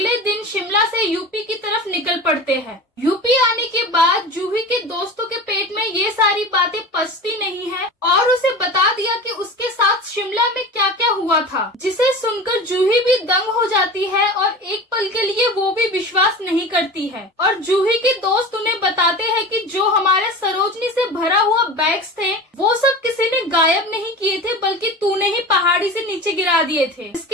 दिन शिमला से यूपी की तरफ निकल पड़ते हैं। यूपी आने के बाद जूही के दोस्तों के पेट में ये सारी बातें पचती नहीं है और उसे बता दिया कि उसके साथ शिमला में क्या क्या हुआ था, जिसे सुनकर जूही भी दंग हो जाती है और एक पल के लिए वो भी विश्वास नहीं करती है। और जूही के दोस्त उन्हें बताते हैं कि जो हमारे सरोजनी से भरा हुआ बैग्स थे वो सब किसी ने गायब नहीं किए थे, बल्कि तूने ही पहाड़ी से नीचे गिरा दिए थे।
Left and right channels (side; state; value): both; normal; correlation 0.32